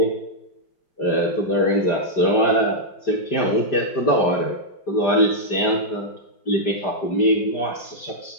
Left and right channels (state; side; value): late; right; 5.0 ms